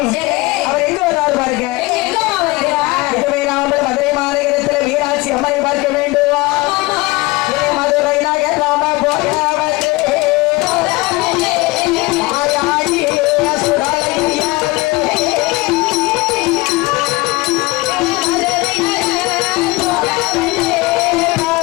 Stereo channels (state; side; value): quieter; right; 22.2 dB